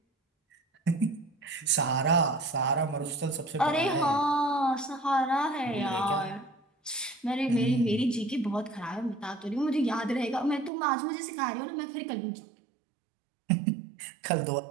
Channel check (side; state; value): left; drops out; at 10.7 s